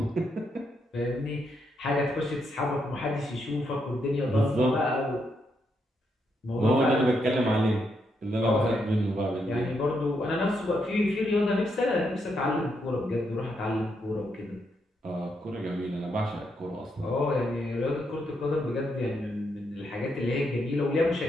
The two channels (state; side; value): normal; both; correlation 0.79